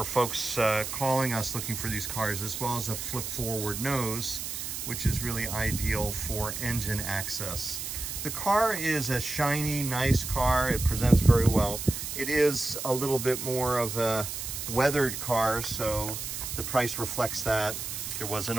folks calling us looking for these cars, as well as a flip forward nose, which is really ideal for engine access. The car is a shiny, nice car. It presents very well. It is a little bit more of a weathered car, so the price reflects that. There was an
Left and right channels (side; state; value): right; noise; hiss, 6 dB below the sound